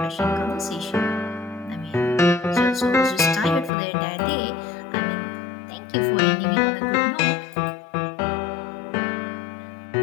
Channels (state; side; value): drops out; right; at 3.7 s